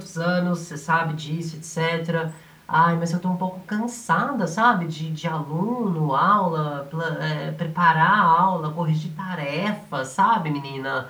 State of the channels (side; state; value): both; identical; correlation 1.00